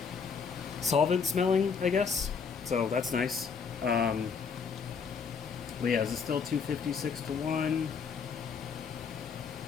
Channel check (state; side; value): quieter; right; 5.9 dB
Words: solvent smelling, I guess. So that's nice. But yeah, is it still 256 to 1?